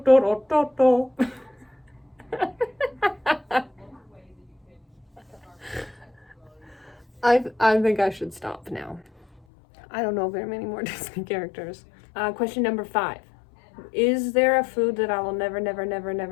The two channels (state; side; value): drops out; right; at 9.4 s